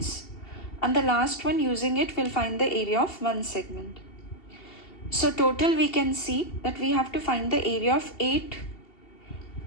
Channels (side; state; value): right; late; 2.7 ms